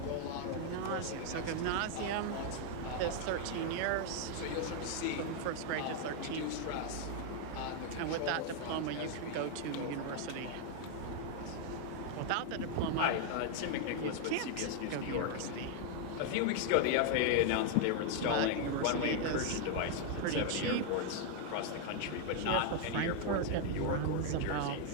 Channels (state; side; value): different; both; correlation 0.00